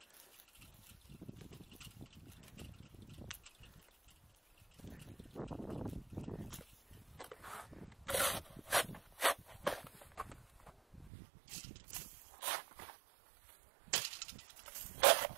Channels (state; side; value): drops out; left; at 11.1 s